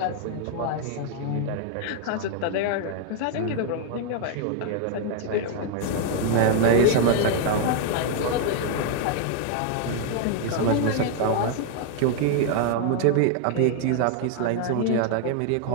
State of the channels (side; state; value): both; different; correlation 0.00